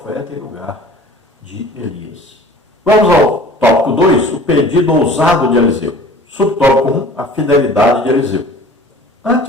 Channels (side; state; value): both; normal; correlation 0.45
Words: em lugar de Elias. Vamos ao tópico 2, o pedido ousado de Eliseu. Subtópico 1, a fidelidade de Eliseu.